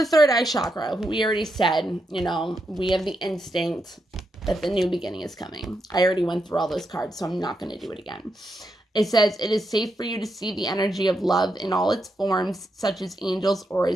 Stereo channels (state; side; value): normal; both; correlation 0.83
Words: third eye chakra, we already said, we have the instinct that the new beginning is coming. I already went through all those cards, so I'm not going to do it again. It says, it is safe for you to see the energy of love in all its forms, such as angels,